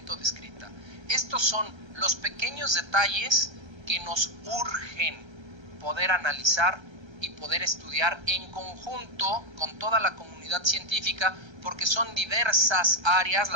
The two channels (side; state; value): left; late; 1.3 ms